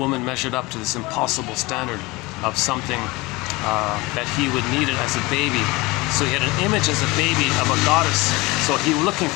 measured up to this impossible standard of something that he would need it as a baby. So he had an image as a baby of a goddess. So he was looking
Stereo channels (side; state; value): right; quieter; 22.9 dB